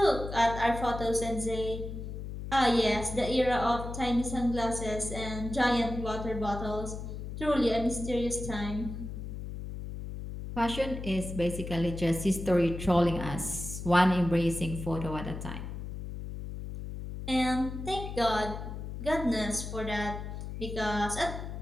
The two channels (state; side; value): noise; left; hum, 7 dB below the sound